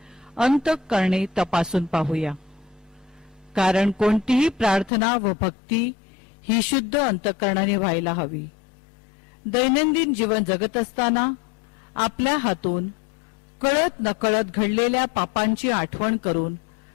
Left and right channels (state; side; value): drops out; right; at 4.9 s